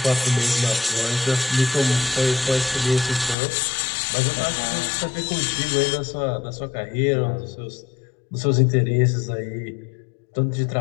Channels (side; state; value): right; drops out; at 3.4 s